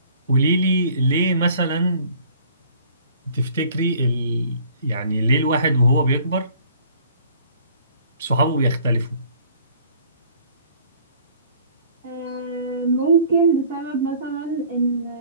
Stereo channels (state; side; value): inverted; both; correlation -0.54